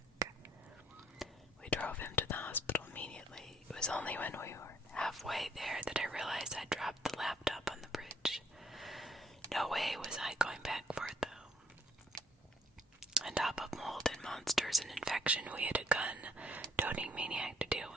We drove him to the hospital immediately. It was only when we were halfway there that I realized I'd dropped the laptop on the bridge. No way was I going back for it, though. On top of mold and monsters and infection, we had a gun-toting maniac to deal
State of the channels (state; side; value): normal; both; correlation 0.65